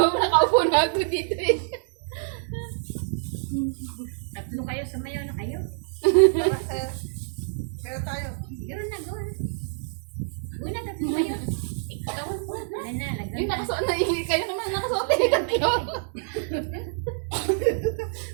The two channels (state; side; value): silent; left; 61 dB below the other